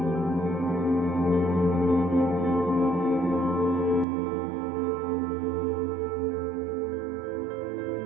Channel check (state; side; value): drops out; left; at 4.0 s